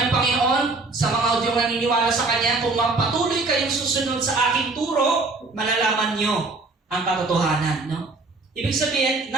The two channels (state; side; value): quieter; left; 3.5 dB